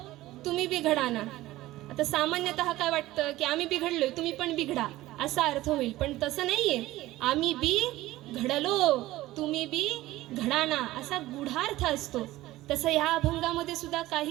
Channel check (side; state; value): left; quieter; 16.8 dB